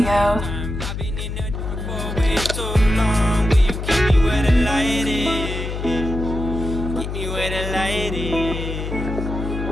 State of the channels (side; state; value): left; noise; hum, 5 dB below the sound